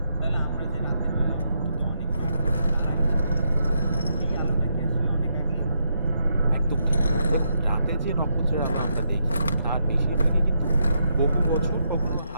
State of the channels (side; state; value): both; inverted; correlation -0.79